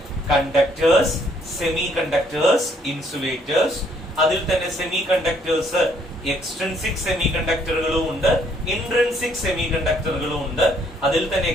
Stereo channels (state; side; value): normal; both; correlation 0.67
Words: കണ്ടക്ടേഴ്സ്, സെമി കണ്ടക്ടേഴ്സ്, ഇൻസുലേറ്റേഴ്സ്. അതിൽ തന്നെ സെമി കണ്ടക്ടേഴ്സ് എക്സ്ട്രിൻസിക് സെമി കണ്ടക്ടറുകളും ഉണ്ട്, ഇൻട്രിൻസിക് സെമി കണ്ടക്ടറുകളും ഉണ്ട്. അതിൽ തന്നെ